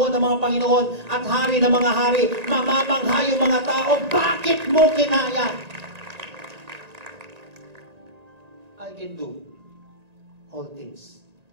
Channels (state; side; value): late; left; 1.9 ms